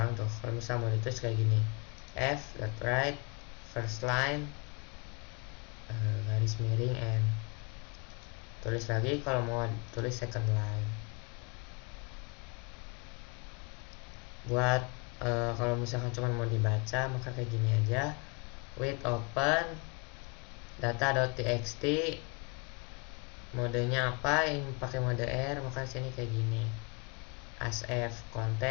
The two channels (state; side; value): quieter; right; 31.5 dB